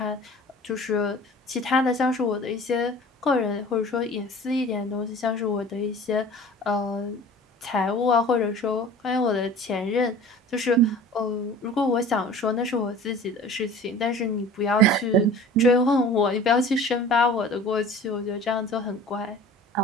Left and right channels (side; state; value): both; normal; correlation 0.43